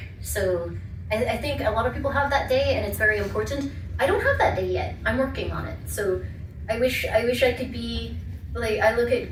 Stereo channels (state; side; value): identical; both; correlation 1.00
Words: So I think a lot of people have that day and it's very important. I don't have that day yet. I'm working on it. So I wish I could be like, I look at